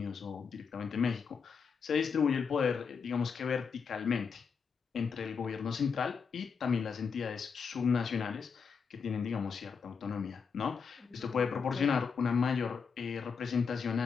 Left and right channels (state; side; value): quieter; right; 5.9 dB